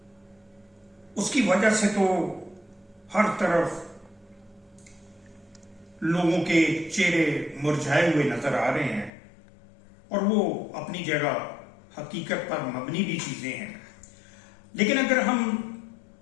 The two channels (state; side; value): drops out; right; at 9.1 s